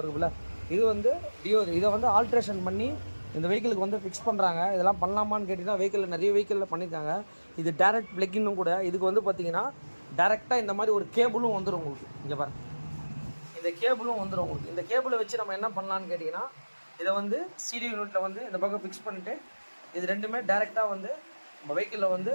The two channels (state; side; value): inverted; both; correlation -1.00